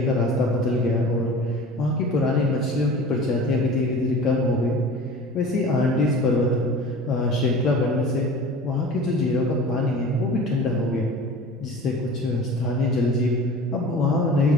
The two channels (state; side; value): normal; both; correlation 0.39